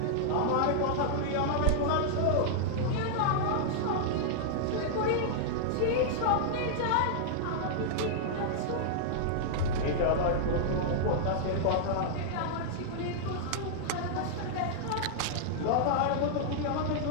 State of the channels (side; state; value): both; different; correlation -0.01